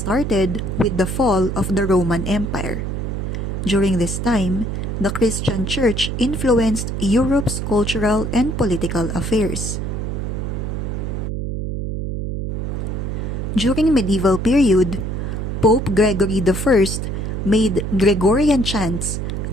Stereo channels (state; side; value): noise; right; hum, 3 dB below the sound